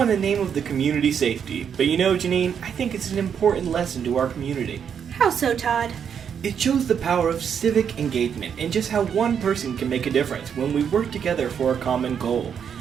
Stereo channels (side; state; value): left; quieter; 7.7 dB